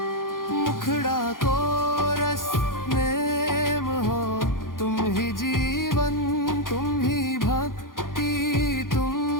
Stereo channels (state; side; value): late; right; 0.90 ms